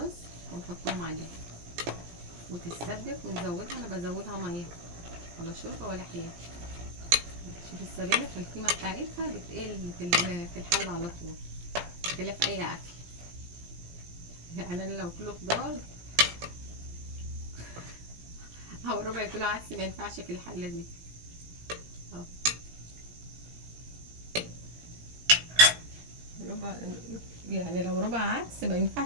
ونحطهم عليها وتتسبك ونزودها. انا بزودها ميه ولا شوربه ولا حاجه. شوف السبانخ القيمه بتاعتها بتقل في الحل على طول بخلاف اي اكل. يعني انا لو كيلو خضار او ربع كيلو عدس ما ينفعش في الحله دي. ربع، يعني لو ربع عدس ما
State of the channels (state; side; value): late; left; 17 ms